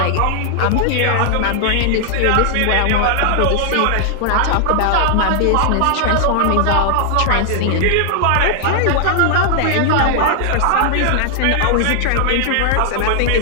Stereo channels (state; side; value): different; both; correlation 0.00